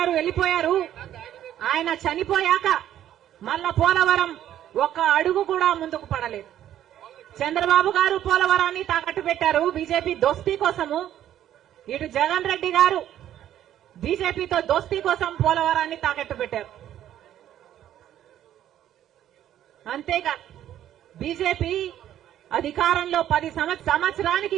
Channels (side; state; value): left; quieter; 11.5 dB